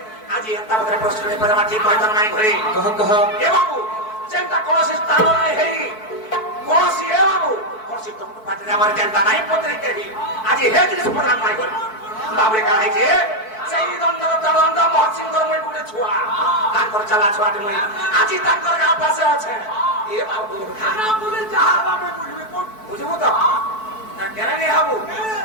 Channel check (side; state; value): right; late; 4.6 ms